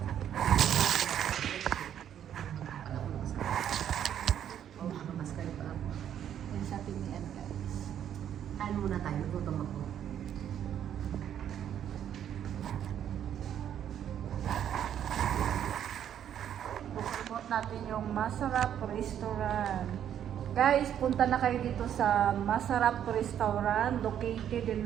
Kain muna tayo, gutom ako. Promote natin yung Masarap Restaurant. Guys, punta na kayo dito sa Masarap Restaurant, located in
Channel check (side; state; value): left; quieter; 9.8 dB